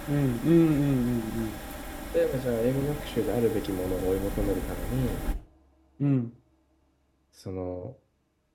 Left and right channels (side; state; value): both; identical; correlation 1.00